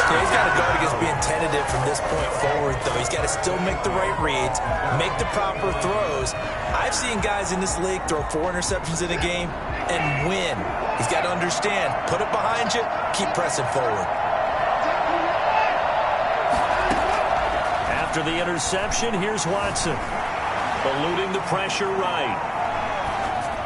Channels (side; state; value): both; identical; correlation 1.00